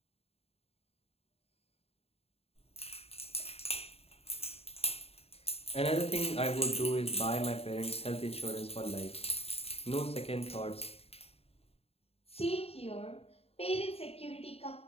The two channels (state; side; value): late; right; 0.29 ms